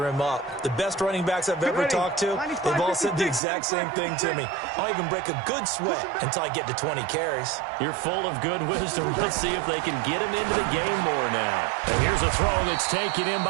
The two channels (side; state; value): left; drops out; at 3.4 s